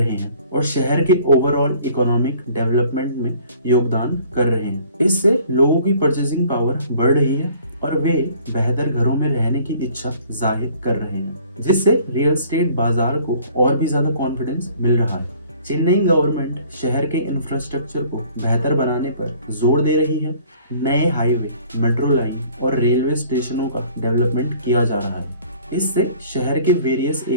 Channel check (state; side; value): inverted; both; correlation -0.54